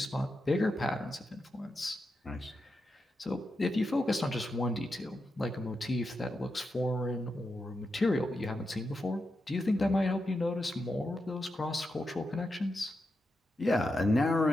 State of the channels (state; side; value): normal; both; correlation 0.87